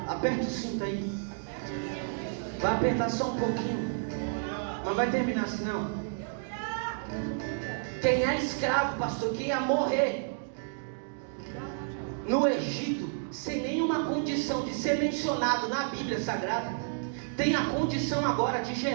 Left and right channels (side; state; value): left; silent; digital silence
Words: aperta o cinto aí, vai apertar só um pouquinho, não vai terminar assim não. Quem é escravo, pastor, quem ia morrer no Egito, sem nenhuma condição de ser mencionado na Bíblia Sagrada, tem a condição agora de